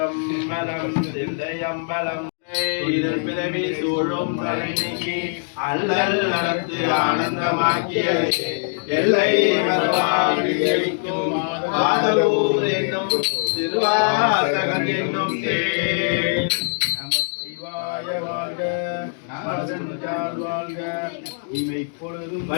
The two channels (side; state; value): right; silent; digital silence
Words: தில்லையம்பலம் இதன் பிறவி சூழும் தலை நீக்கி அல்லல் நடத்து ஆனந்தமாக்கிய எல்லை மறுவாக்கும் ஆதலூர் என்னும் திருவாசகம் என்னும் தேன். நமச்சிவாய வாழ்க, நமதஞ்சால் வாழ்க, இமை பொழுதும்